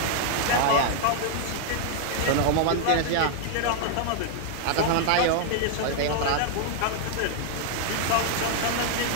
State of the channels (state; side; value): different; both; correlation 0.00